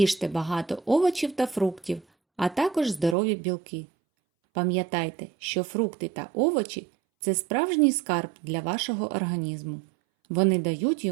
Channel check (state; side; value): drops out; left; at 3.2 s